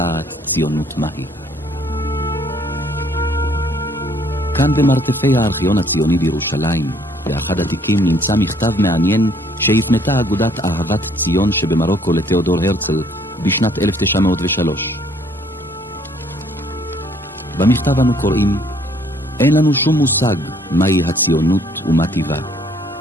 ציונות מהי. כאן במרתפי הארכיון הציוני בירושלים, באחד התיקים נמצא מכתב מעניין שהתנתה אגודת אהבת ציון שבמרוקו לתיאודור הרצל בשנת 1903. במכתב אנו קוראים: אין לנו שום מושג מהי הציונות ומה טיבה,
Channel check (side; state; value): both; normal; correlation 0.62